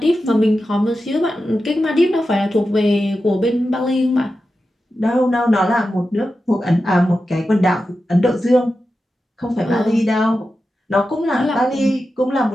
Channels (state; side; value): normal; both; correlation 0.91